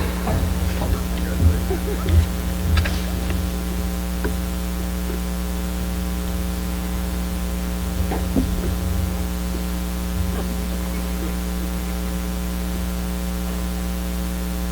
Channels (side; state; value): both; identical; correlation 1.00